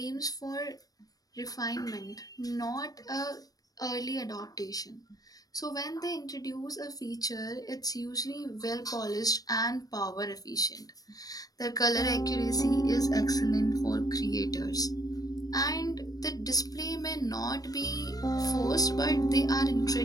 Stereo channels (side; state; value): right; late; 0.18 ms